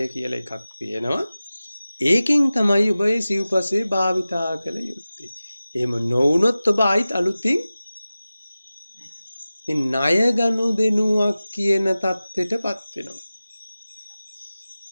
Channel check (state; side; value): inverted; both; correlation -0.96